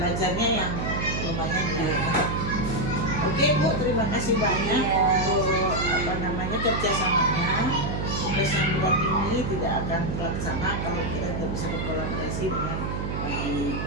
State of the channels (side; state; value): right; noise; hum, 3 dB below the sound